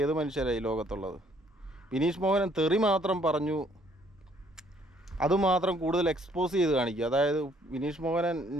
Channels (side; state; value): both; normal; correlation 0.63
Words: ഏത് മനുഷ്യരായി ലോകത്തുള്ളത്? വിനീഷ് മോഹനൻ തെറി മാത്രം പറഞ്ഞു, അതുമാത്രം കൂടുതൽ എക്സ്പോസ് ചെയ്ത് കാണിക്കുക. അതായത് വിനീഷ് മോഹനൻ